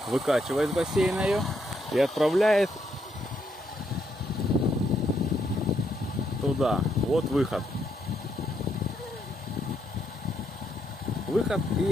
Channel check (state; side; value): normal; both; correlation 0.76